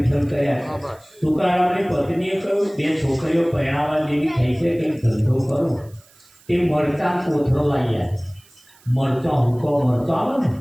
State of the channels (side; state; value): right; noise; hiss, 28 dB below the sound